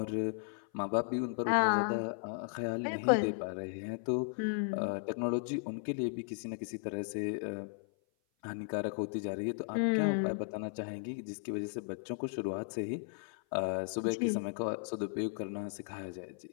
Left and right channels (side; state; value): right; silent; 54 dB below the other